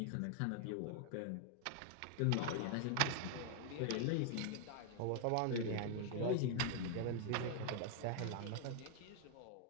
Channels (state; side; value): different; both; correlation 0.00